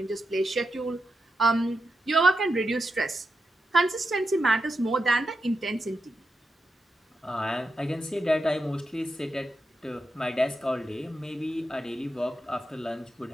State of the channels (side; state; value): both; normal; correlation 0.87